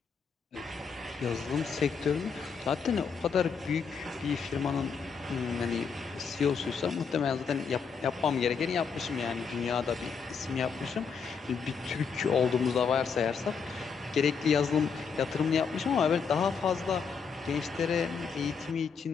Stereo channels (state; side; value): quieter; right; 5.9 dB